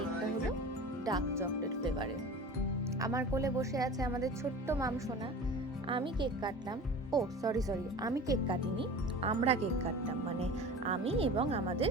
হলো ডার্ক চকলেট ফ্লেভারের। আমার কোলে বসে আছে আমাদের ছোট্ট মামসোনা। আমি কেক কাটলাম, ও সরি আমি কেক কাটিনি, আমরা কেক কাটলাম, মানে আমি এবং আমাদের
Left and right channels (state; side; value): normal; both; correlation 0.37